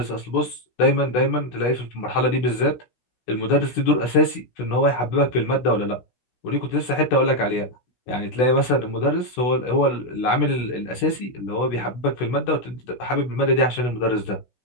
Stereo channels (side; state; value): right; late; 16 ms